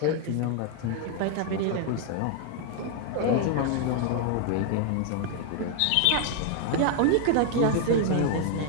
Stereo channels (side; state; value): both; different; correlation 0.00